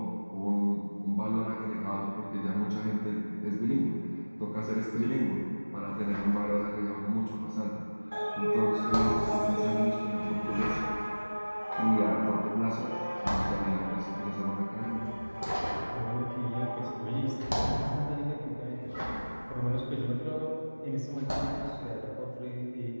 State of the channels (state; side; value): inverted; both; correlation -1.00